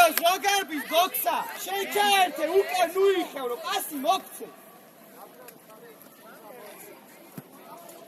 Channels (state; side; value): identical; both; correlation 1.00